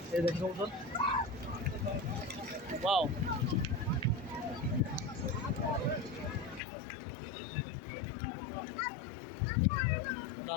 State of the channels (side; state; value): right; drops out; at 6.6 s